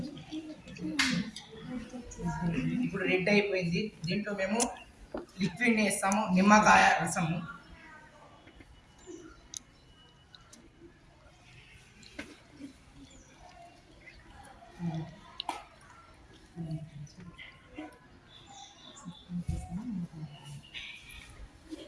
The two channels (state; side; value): identical; both; correlation 1.00